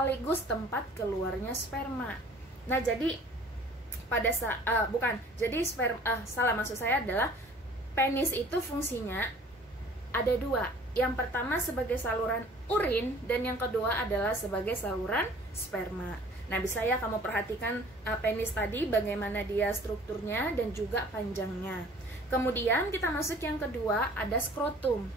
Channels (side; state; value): both; normal; correlation 0.50